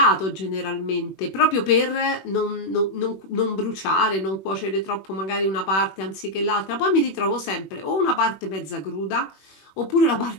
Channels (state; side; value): late; right; 21 ms